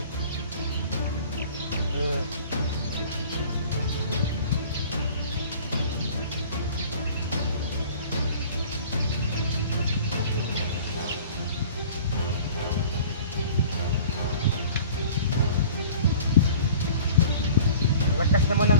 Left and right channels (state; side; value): inverted; both; correlation -0.45